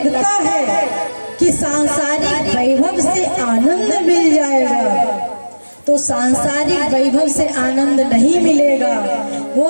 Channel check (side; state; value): both; inverted; correlation -1.00